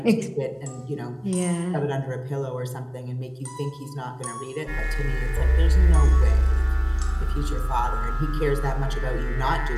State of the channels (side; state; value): both; identical; correlation 1.00